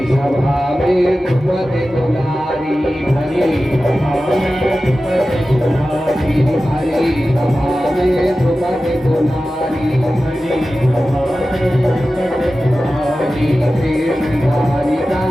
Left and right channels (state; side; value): normal; both; correlation 0.94